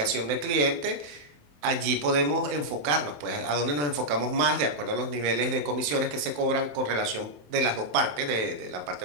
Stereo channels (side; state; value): left; late; 27 ms